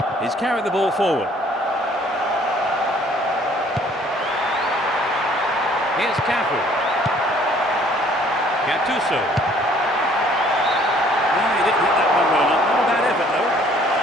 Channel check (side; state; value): both; normal; correlation 0.58